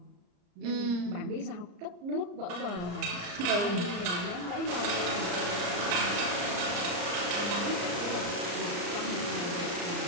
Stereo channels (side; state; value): left; late; 34 ms